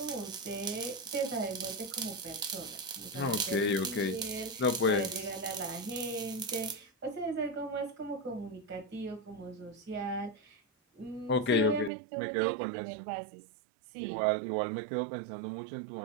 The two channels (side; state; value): left; drops out; at 11.9 s